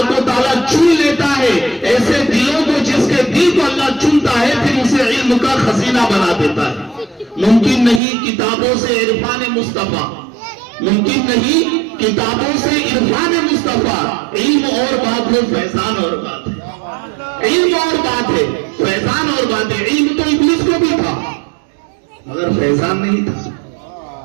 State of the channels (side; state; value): left; drops out; at 8.0 s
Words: و تعالیٰ چن لیتا ہے ایسے دلوں کو، جس کے دل کو اللہ چنتا ہے پھر اسے علم کا خزینہ بنا دیتا ہے۔ ممکن نہیں کتابوں سے عرفان مصطفیٰ، ممکن نہیں کتابوں سے عرفان مصطفیٰ، علم اور بات ہے، فیضان اور بات ہے۔ علم اور بات ہے، فیضان اور بات ہے۔ علم تو ابلیس کو بھی تھا مگر فیضان نہیں تھا،